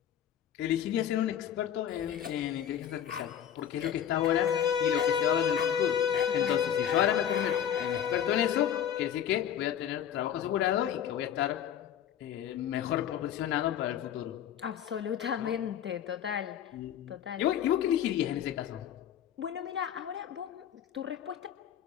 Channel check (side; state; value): right; quieter; 9.6 dB